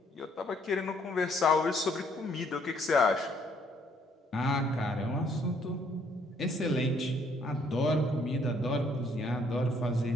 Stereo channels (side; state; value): both; normal; correlation 0.66